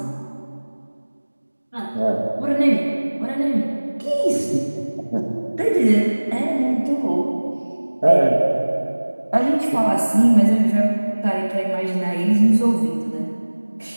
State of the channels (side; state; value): both; inverted; correlation -1.00